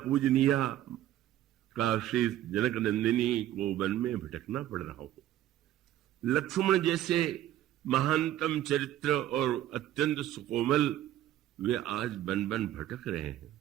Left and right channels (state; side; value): quieter; left; 13.0 dB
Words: पूजनीय काशी जनक नंदिनी को वन में भटकना पड़ रहा हो, लक्ष्मण जैसे महानतम चरित्र और अत्यंत सुकोमल वे आज बन बन भटक रहे हैं,